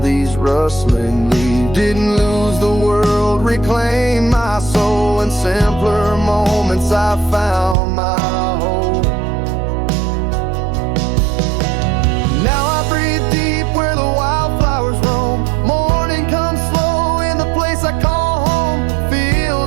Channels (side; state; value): left; drops out; at 7.8 s